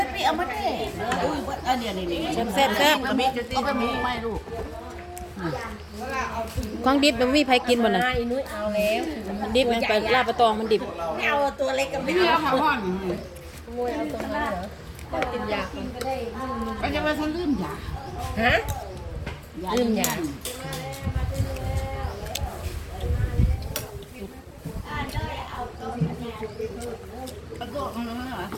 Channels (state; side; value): identical; both; correlation 1.00